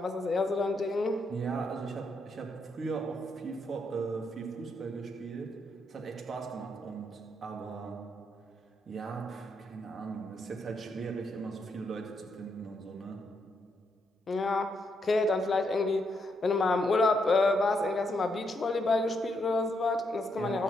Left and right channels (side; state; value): both; normal; correlation 0.78